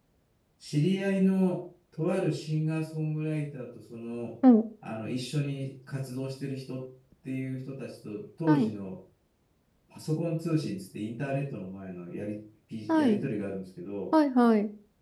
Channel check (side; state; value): both; identical; correlation 1.00